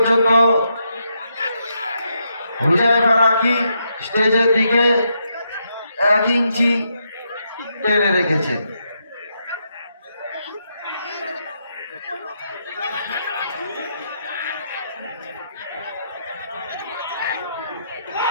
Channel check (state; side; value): inverted; both; correlation -0.80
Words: হুজাইফা রাকি স্টেজের দিকে 1 ইঞ্চি টেনে রেখেছেন।